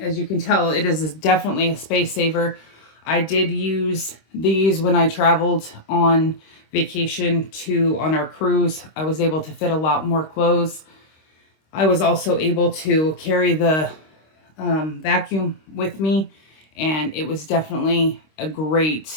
you can tell, it is definitely a space saver. I did use these when I traveled on vacation on our cruise. I was able to fit a lot more clothes. I was also able to carry the vacuum with me, and it was definitely a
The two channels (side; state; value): right; late; 26 ms